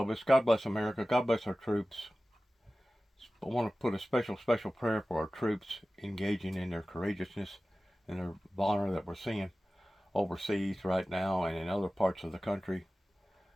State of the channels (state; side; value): normal; both; correlation 0.96